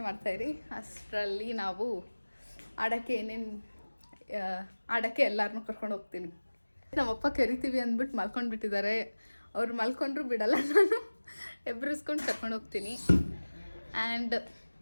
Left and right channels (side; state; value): both; inverted; correlation -1.00